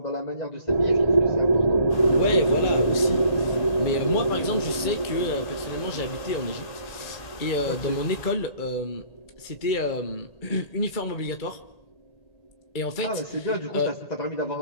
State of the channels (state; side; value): late; right; 1.8 ms